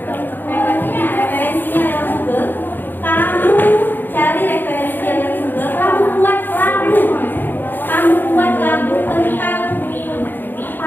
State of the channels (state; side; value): late; right; 0.092 ms